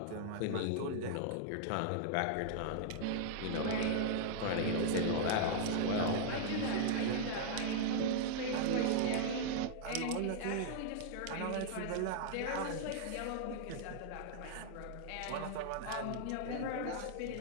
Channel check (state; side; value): different; both; correlation -0.01